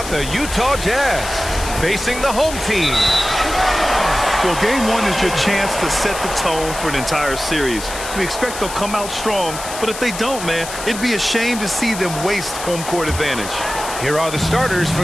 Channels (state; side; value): noise; left; hiss, 9 dB below the sound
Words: the Utah Jazz facing the home team. Well, game one is your chance to set the tone for an entire series. We expect they'll come out strong, but if they don't, man, it'd be a shame to see them waste home court advantage. Here are the starters